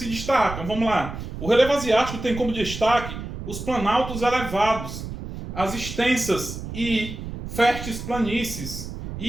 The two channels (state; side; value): noise; right; rumble, 8 dB below the sound